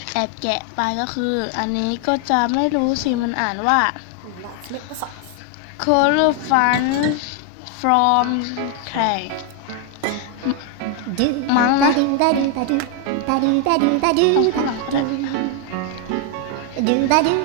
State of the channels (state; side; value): different; both; correlation 0.01